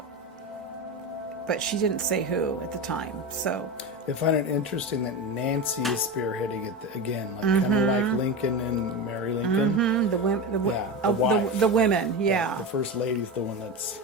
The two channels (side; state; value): both; normal; correlation 0.21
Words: But she didn't say who at the time. So I find it interesting that Nancy is spearheading it again, like kind of like Lincoln and Mary Lincoln. the women, wife. the women, yeah. The first lady's the one that's...